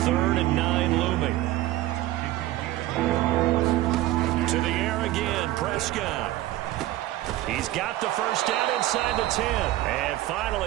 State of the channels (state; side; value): quieter; left; 15.7 dB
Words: 3rd and 9 looming. To the air again, Prescott. He's got the first down inside the 10. And